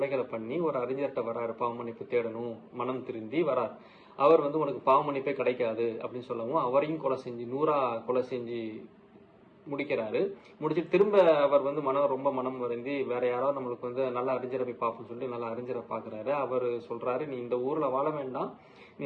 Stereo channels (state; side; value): identical; both; correlation 1.00